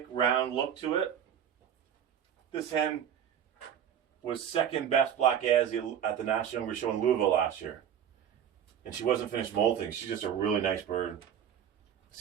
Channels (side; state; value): left; quieter; 9.1 dB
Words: round look to it. This hen was 2nd best black Yazzie at the National Younger Show in Louisville last year. And she wasn't finished molting. She's just a really nice bird.